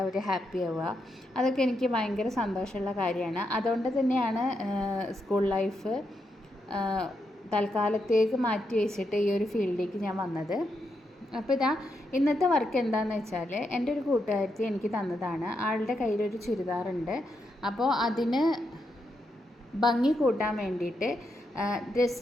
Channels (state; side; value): normal; both; correlation 0.82